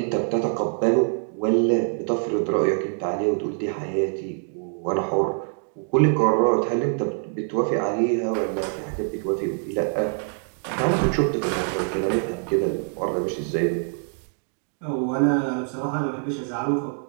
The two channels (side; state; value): left; silent; 56 dB below the other